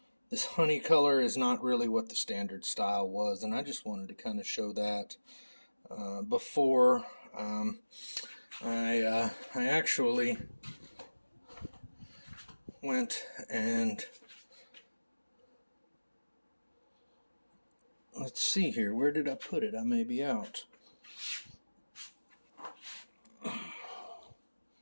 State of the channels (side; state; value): both; inverted; correlation -1.00